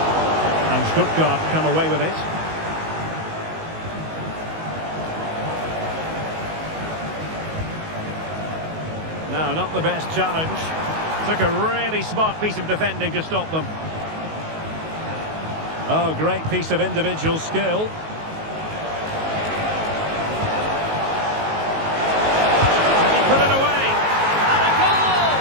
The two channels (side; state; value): left; late; 19 ms